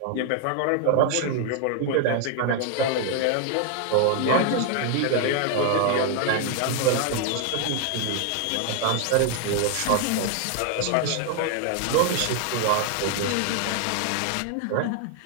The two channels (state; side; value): different; both; correlation 0.00